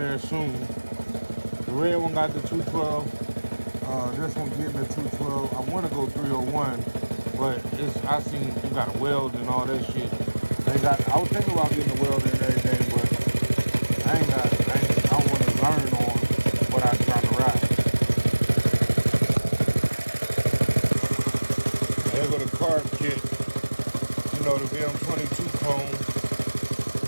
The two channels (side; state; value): both; inverted; correlation -1.00